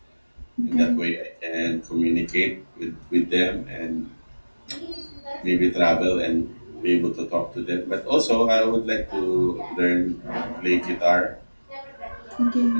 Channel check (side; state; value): both; inverted; correlation -1.00